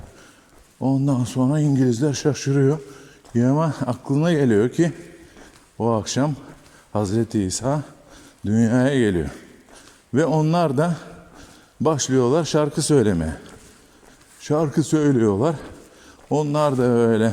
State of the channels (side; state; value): both; identical; correlation 1.00